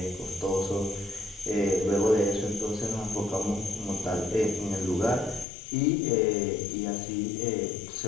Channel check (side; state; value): right; drops out; at 5.5 s